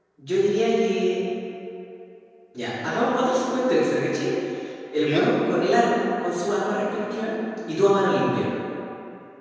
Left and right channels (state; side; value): identical; both; correlation 1.00